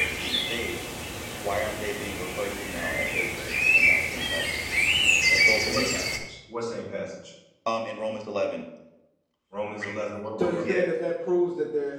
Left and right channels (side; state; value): both; identical; correlation 1.00